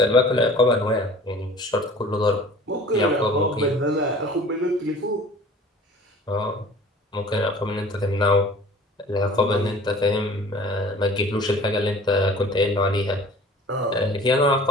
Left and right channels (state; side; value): normal; both; correlation 0.46